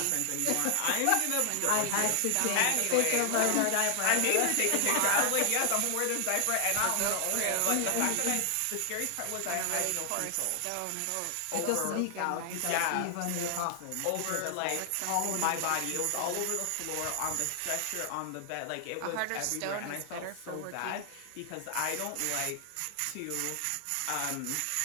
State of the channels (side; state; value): both; different; correlation 0.00